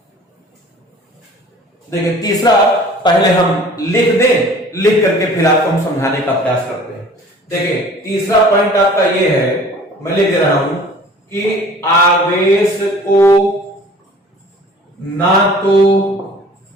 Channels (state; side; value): normal; both; correlation 0.48